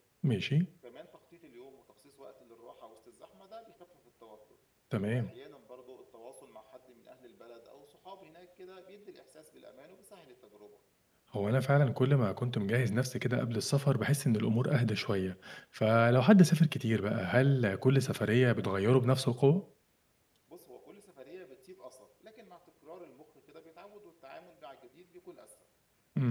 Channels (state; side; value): identical; both; correlation 1.00